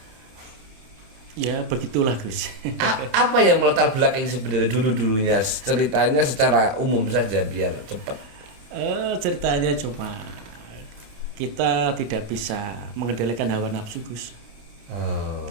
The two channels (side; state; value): left; late; 28 ms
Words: Ya, begitulah, Gus. Apa yang melatar belakang sebenarnya dulunya? Ceritanya secara umum saja biar cepat. Ceritanya cuma kita tidak bisa mengendalikan hawa nafsu, Gus.